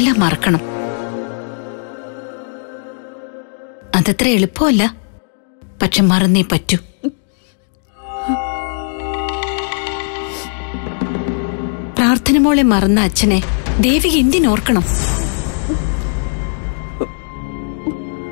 മറക്കണം. അതത്ര എളുപ്പമല്ല, പക്ഷെ മറന്നേ പറ്റൂ. പ്രാർത്ഥന മോളെ മറന്ന അച്ഛനെ ദേവി എന്തിനോർക്കണം?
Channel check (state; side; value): silent; right; digital silence